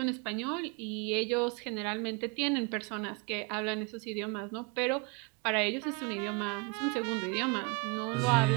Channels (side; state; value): left; quieter; 30.0 dB